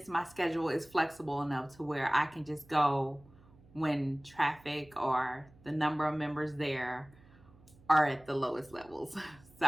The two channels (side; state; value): right; noise; hum, 25 dB below the sound